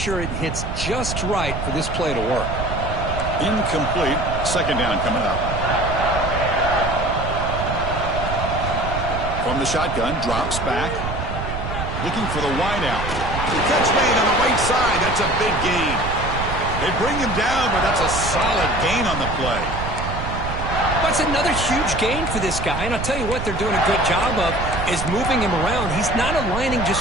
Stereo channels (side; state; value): right; noise; rumble, 5 dB below the sound